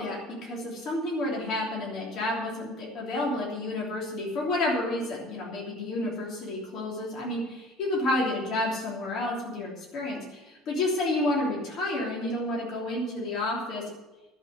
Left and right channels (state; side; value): normal; both; correlation 0.44